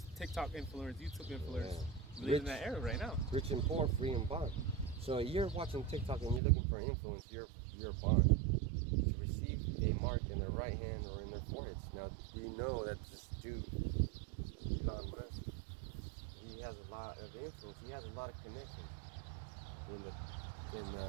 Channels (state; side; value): drops out; left; at 6.4 s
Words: TikTok influencers, YouTube influencers. Yeah. We live in that era right now. Rich and poor, free and bond. So you're watching TikTok and you're looking for influence, you're bond to receive a mark in their right hand or in their foreheads. Now, do you know that this dude, Elon Musk, he has a lot of influence. He has a lot of connections in